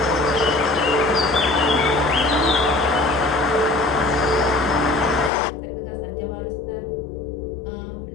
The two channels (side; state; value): right; drops out; at 5.3 s